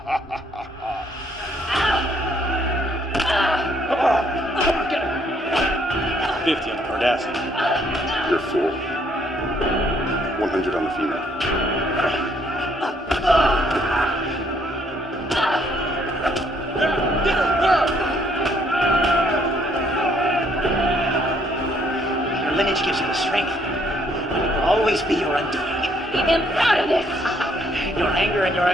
50 on the Cardassian. You're full. 100 on the female. Your lineage gives you the strength. And it will always be your undoing. Keep him out of this! Your anger and your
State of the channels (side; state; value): both; normal; correlation 0.68